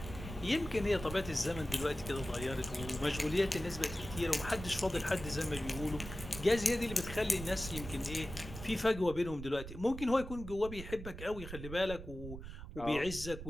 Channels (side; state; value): right; noise; rumble, 10 dB below the sound